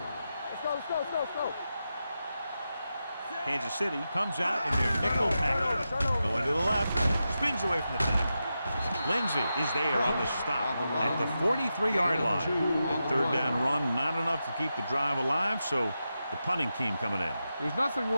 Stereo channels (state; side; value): inverted; both; correlation -0.89